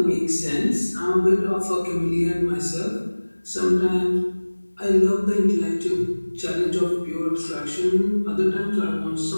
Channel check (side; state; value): both; inverted; correlation -1.00